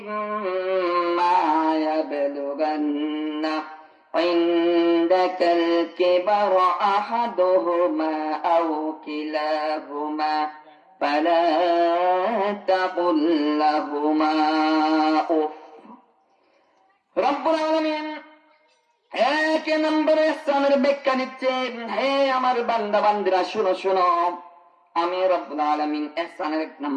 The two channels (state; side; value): identical; both; correlation 1.00